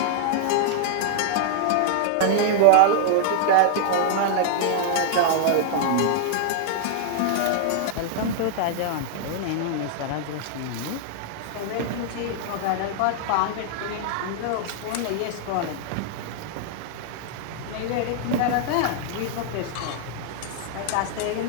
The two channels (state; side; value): different; both; correlation -0.01